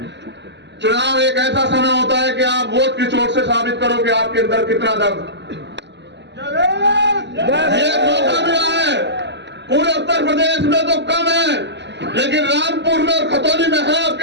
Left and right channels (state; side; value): late; left; 0.51 ms